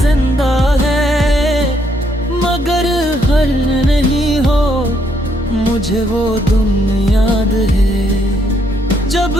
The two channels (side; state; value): both; normal; correlation 0.72